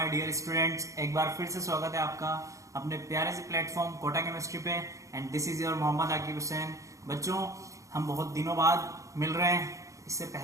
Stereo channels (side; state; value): left; late; 0.15 ms